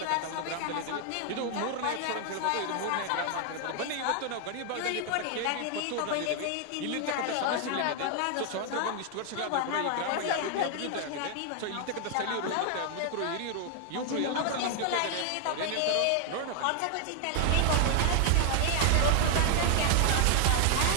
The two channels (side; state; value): both; different; correlation 0.00